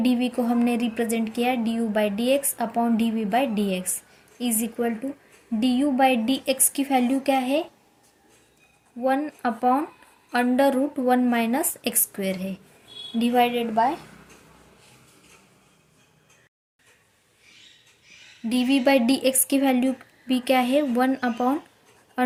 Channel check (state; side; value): identical; both; correlation 1.00